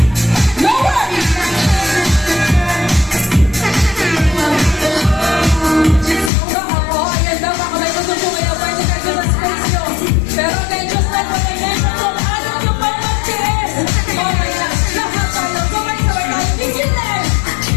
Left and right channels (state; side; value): drops out; right; at 6.3 s